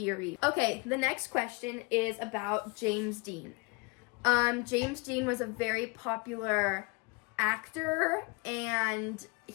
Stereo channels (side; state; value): right; quieter; 28.8 dB